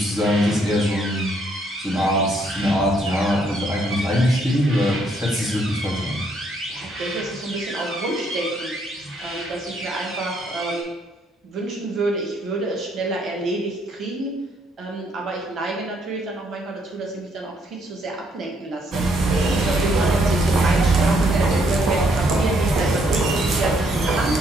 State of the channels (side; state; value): both; normal; correlation 0.70